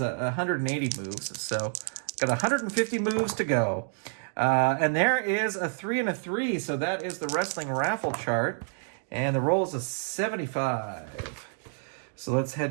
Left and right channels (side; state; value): left; silent; 59 dB below the other